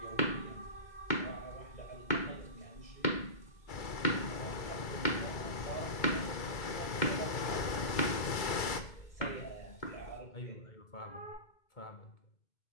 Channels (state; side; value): late; right; 2.3 ms